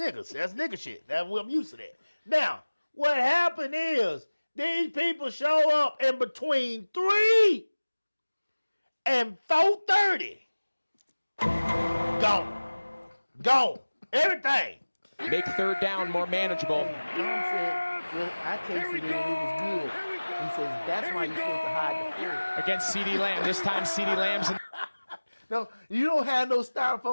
That's nigga shit. I'm used to that. Now, what happened is these people show up in between 3 and 4:30. Gone. Everything. Make third down more manageable. John said, well, I tasted it and it was good. He says, that's why you're supposed to hide the food. Against CeeDee Lamb. This time CeeDee Lamb's in No, you don't have no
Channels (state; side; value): inverted; both; correlation -1.00